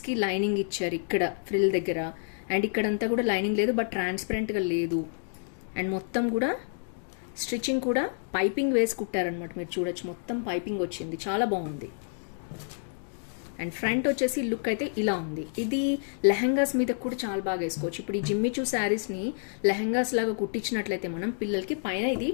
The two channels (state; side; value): silent; right; digital silence